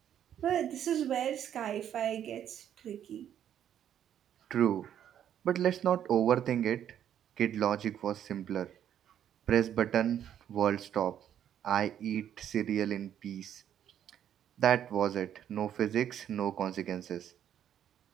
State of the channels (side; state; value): left; quieter; 10.0 dB